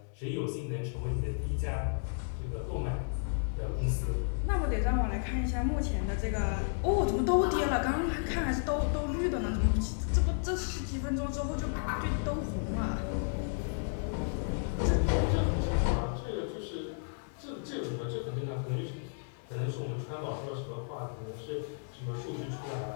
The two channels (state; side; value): silent; right; digital silence